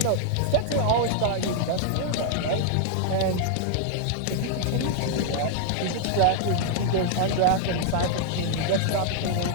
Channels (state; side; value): different; both; correlation 0.00